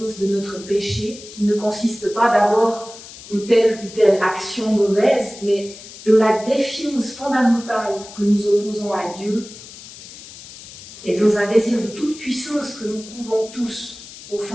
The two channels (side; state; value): left; noise; hiss, 16 dB below the sound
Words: de notre péché, qui ne consiste pas d'abord en telle ou telle action mauvaise, mais de la défiance fondamentale que nous opposons à Dieu et dans un désir de toute puissance que nous couvons tous au